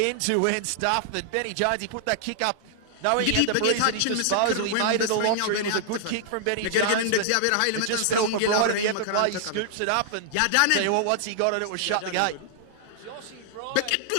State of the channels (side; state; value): both; different; correlation -0.01